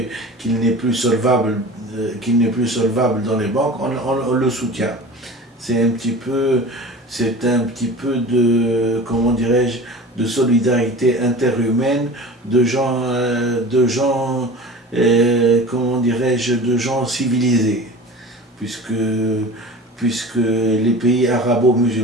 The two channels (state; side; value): normal; both; correlation 0.37